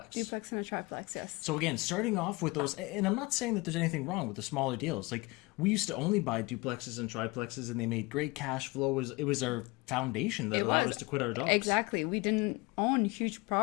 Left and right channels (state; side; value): quieter; right; 24.2 dB